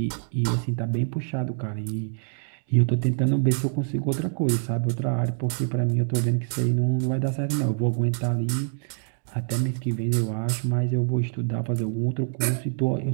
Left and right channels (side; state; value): left; silent; 60 dB below the other